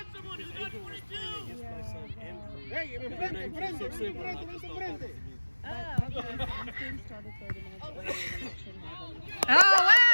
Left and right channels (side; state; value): both; inverted; correlation -1.00